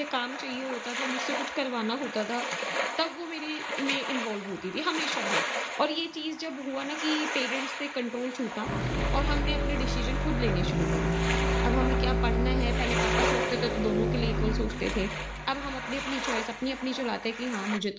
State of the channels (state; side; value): identical; both; correlation 1.00